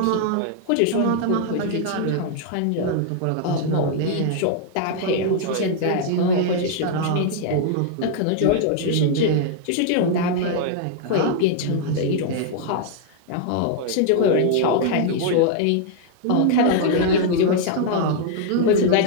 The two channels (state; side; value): different; both; correlation 0.00